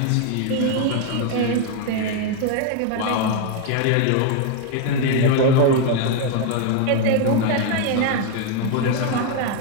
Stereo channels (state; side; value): different; both; correlation 0.01